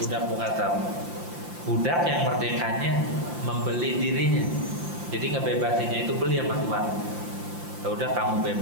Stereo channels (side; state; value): left; late; 5.9 ms